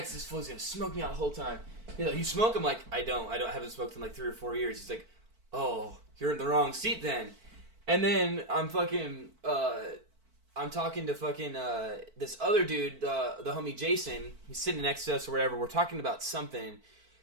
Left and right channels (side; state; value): left; late; 4.5 ms